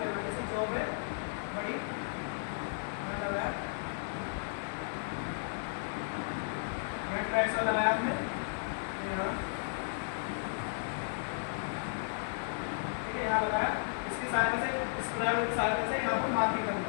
करना, जैसे जॉब है बड़ी, लगाया ट्राइसर लगाया हमने यहाँ, ठीक है, यहाँ लगाया, इसकी सहायता से, इस पैरेलल की सहायता से यहाँ पर मार्किंग करना,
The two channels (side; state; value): right; silent; digital silence